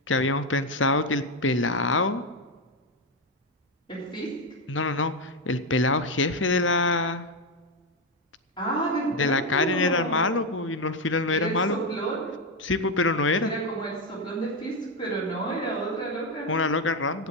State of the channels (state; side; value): normal; both; correlation 0.08